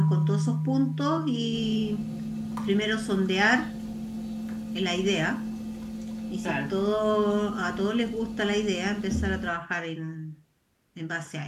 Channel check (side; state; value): both; identical; correlation 1.00